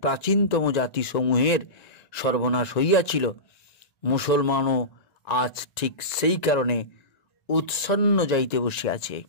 প্রাচীনতম জাতিসমূহের সর্বনাশ হইয়াছিল, মুসলমানও আজ ঠিক সেই কারণে উৎসন্ন যাইতে বসিয়াছে।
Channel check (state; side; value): late; right; 1.9 ms